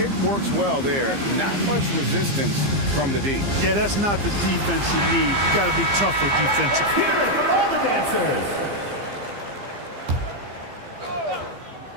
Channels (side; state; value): left; late; 15 ms